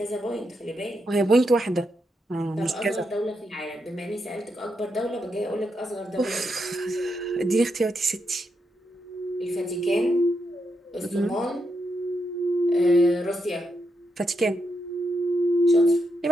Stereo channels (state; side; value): normal; both; correlation 0.83